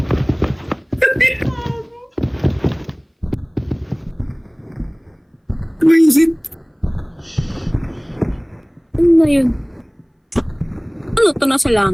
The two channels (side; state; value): both; identical; correlation 1.00